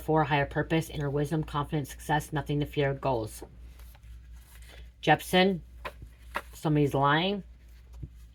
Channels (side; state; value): both; identical; correlation 1.00